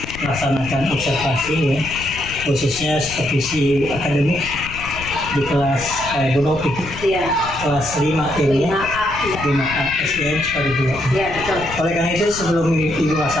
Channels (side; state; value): left; noise; rumble, 13 dB below the sound